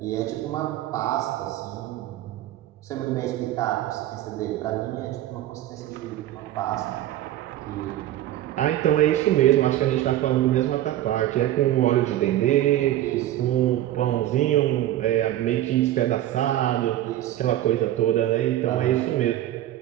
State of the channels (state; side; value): quieter; left; 13.5 dB